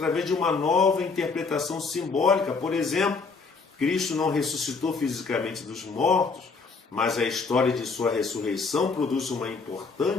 de uma nova interpretação simbólica. Por exemplo, Cristo não ressuscitou fisicamente dos mortos, mas a história de sua ressurreição produz uma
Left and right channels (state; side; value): quieter; right; 4.6 dB